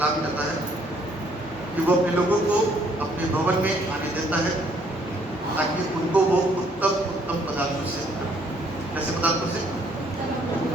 करता है कि वो अपने लोगों को अपने भवन में आने देता है ताकि उनको वो उत्तम पदार्थों से, कैसे पदार्थों से,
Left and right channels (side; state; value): both; normal; correlation 0.65